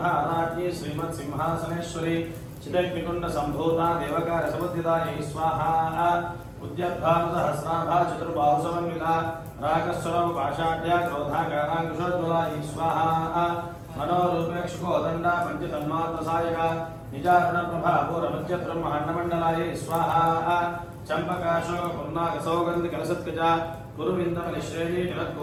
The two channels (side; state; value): both; identical; correlation 1.00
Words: श्रीमत् सिंहासनेश्वरी चिदग्निकुंड संभूता देवकार समुद्दितायै स्वाहा। उद्यद्भाव सहस्राभा चतुर्बाहु समन्विता रागस्वरम पाषाढ्या क्रोधाकारांकुशोज्ज्वलायै स्वाहा। मनोरूपेक्षुकोदंडा पंचतन्मात्रसायका निजारण प्रभा पूर्वमध्य ब्रह्माण्डमण्डलायै स्वाहा। चंपकाशोक पुन्नाक सौगंध कलसत्कजा गुरुविंदमनिश्रेणी